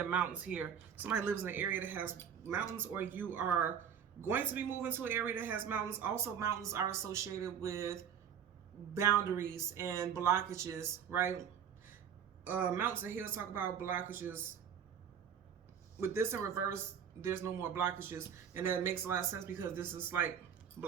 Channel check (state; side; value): quieter; left; 8.0 dB